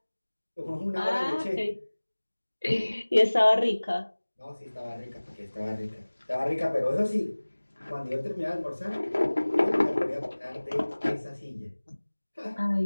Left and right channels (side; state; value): both; inverted; correlation -1.00